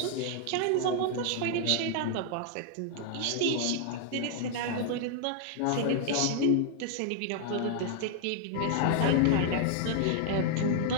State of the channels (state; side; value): different; both; correlation 0.00